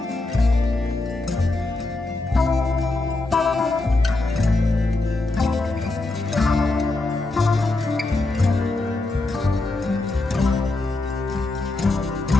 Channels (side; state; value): right; quieter; 3.0 dB